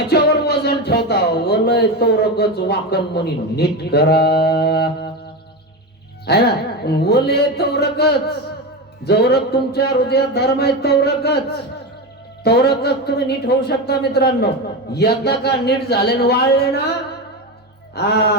वजन ठेवता. वलय तोरकच वाकन म्हणी नीट करा, है ना? वले तोरकच. जवरक तुमच्या हृदयात धर्म आहे तोरकच तुम्ही नीट होऊ शकता मित्रांनो. एकदा का नीट झाले वाळले ना,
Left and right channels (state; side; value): normal; both; correlation 0.18